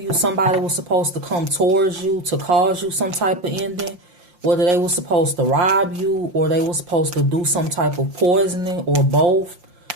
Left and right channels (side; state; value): left; late; 5.7 ms